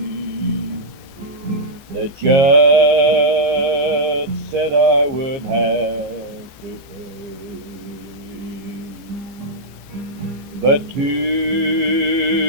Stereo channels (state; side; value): late; left; 14 ms